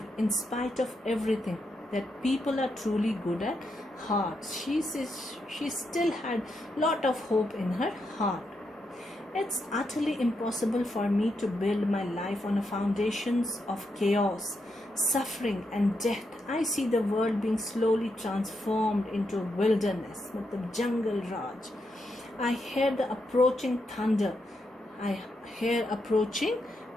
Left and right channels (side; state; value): both; normal; correlation 0.82